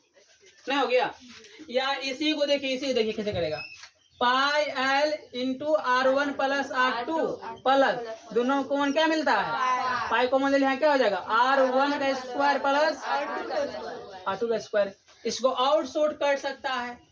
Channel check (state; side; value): identical; both; correlation 1.00